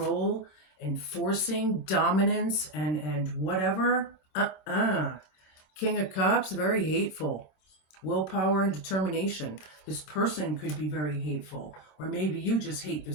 and forcing dominance and whatever. King of Cups, very hateful. Willpower and determination. This person could be very hateful, or maybe you just hate the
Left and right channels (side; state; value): right; late; 26 ms